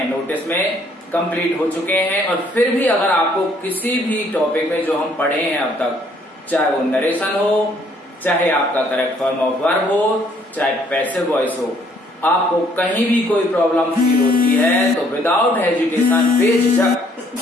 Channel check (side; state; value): both; normal; correlation 0.64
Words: नोटिस में कंप्लीट हो चुके हैं। और फिर भी अगर आपको किसी भी टॉपिक में जो हम पढ़े हैं अब तक, चाहे वो नरेशन हो, चाहे आपका करेक्ट फॉर्म ऑफ वर्ब हो, चाहे पैसिव वॉइस हो, आपको कहीं भी कोई प्रॉब्लम फील होती है तो विदाउट हेजिटेशन